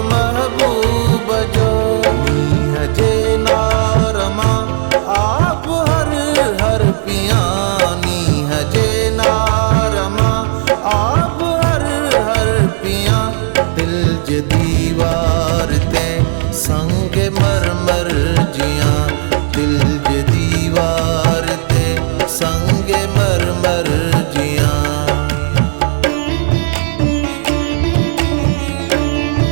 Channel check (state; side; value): silent; left; digital silence